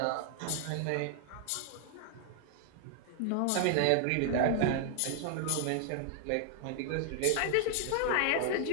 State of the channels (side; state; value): both; different; correlation -0.01